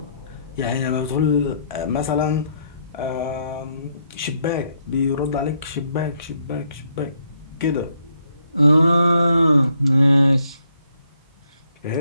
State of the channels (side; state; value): both; inverted; correlation -0.73